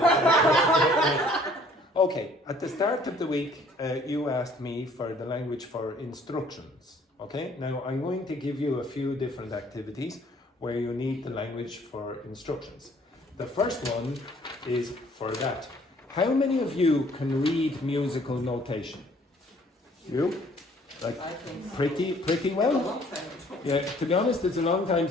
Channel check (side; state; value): both; normal; correlation 0.58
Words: Okay, at the start of the week, you asked me for the language for instructions. Okay, now I'm going to give you a few different activities where you need the language for instructions. The first one is for that. How many of you can read musical notation? You? Like I think so. pretty A well? long time ago. Yeah, to be honest, it's a long time